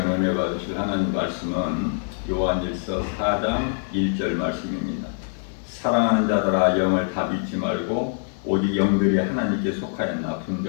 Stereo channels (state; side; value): silent; right; 60 dB below the other